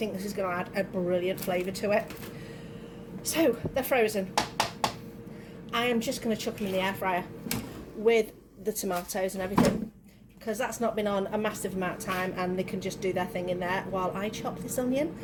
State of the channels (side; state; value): both; identical; correlation 1.00